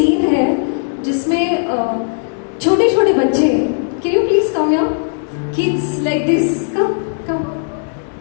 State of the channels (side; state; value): right; silent; digital silence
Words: है जिसमें छोटे छोटे बच्चे, can you please come your kids like this, come come